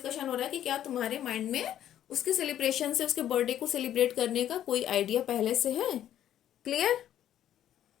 हो रहा है कि क्या तुम्हारे माइंड में उसके सेलिब्रेशन से, उसके बर्थडे को सेलिब्रेट करने का कोई आइडिया पहले से है। क्लियर।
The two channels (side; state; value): right; quieter; 11.3 dB